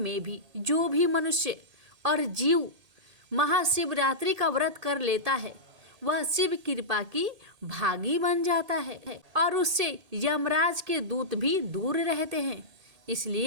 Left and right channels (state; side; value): late; left; 1.8 ms